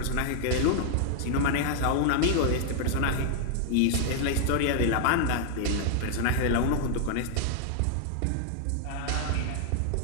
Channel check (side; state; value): both; different; correlation 0.00